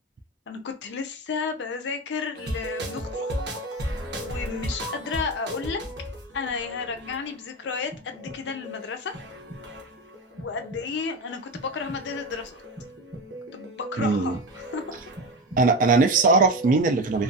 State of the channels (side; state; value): both; normal; correlation 0.21